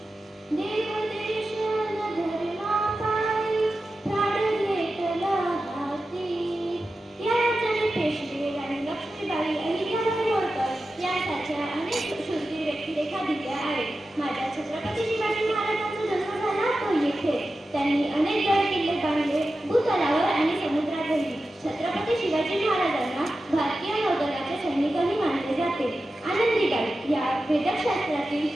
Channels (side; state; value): both; normal; correlation 0.92